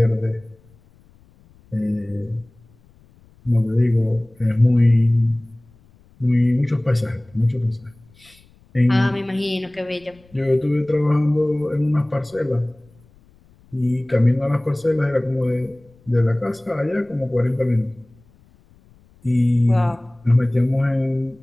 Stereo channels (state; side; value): noise; left; rumble, 29 dB below the sound